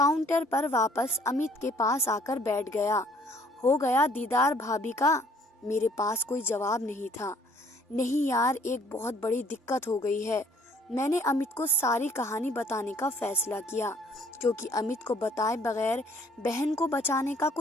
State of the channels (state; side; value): normal; both; correlation 0.59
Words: पर वापस अमित के पास आकर बैठ गया। हो गया दीदार भाभी का? मेरे पास कोई जवाब नहीं था। नहीं यार, एक बहुत बड़ी दिक्कत हो गई है। मैंने अमित को सारी कहानी बताने का फैसला किया, क्योंकि अमित को बताए बगैर बहन को बचाने का